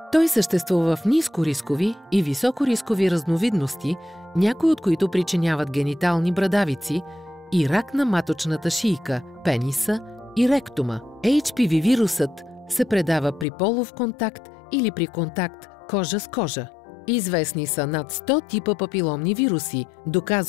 Той съществува в нискорискови и високорискови разновидности, някои от които причиняват генитални брадавици и рак на маточната шийка, пениса и ректума. HPV вирусът се предава при полов контакт или при контакт кожа с кожа. Известни са над 100 типа папиломни вируси,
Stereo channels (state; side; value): drops out; right; at 13.5 s